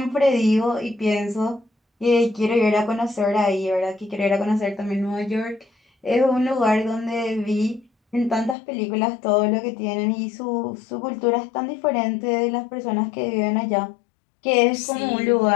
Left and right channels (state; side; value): drops out; right; at 8.6 s